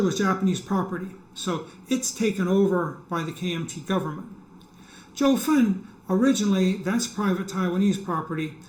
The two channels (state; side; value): identical; both; correlation 1.00